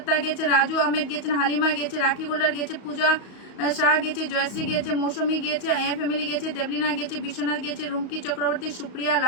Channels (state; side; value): late; right; 34 ms